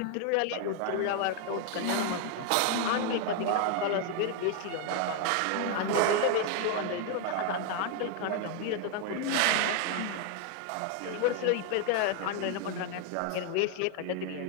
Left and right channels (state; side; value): different; both; correlation 0.00